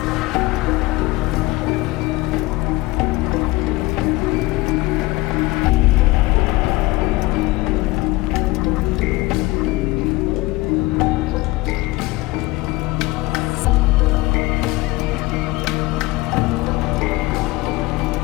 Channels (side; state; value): right; quieter; 20.6 dB